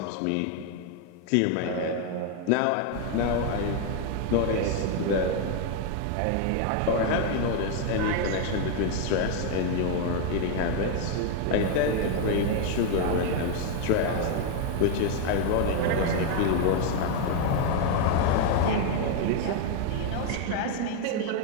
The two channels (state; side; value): different; both; correlation 0.00